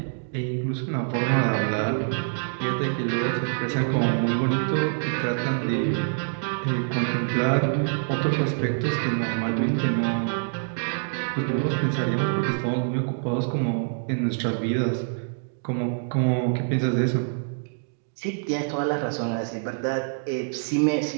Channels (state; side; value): silent; left; digital silence